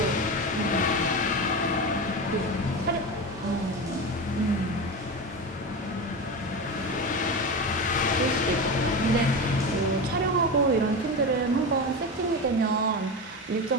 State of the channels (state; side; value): normal; both; correlation 0.22